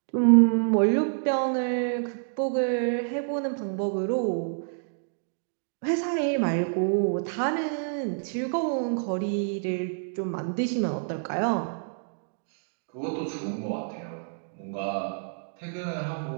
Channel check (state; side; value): silent; left; digital silence